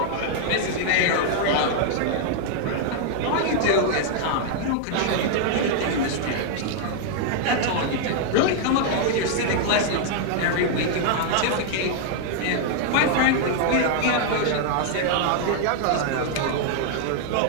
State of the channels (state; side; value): different; both; correlation 0.00